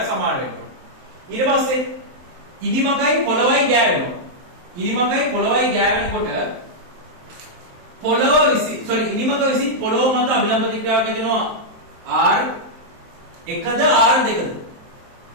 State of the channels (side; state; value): left; late; 23 ms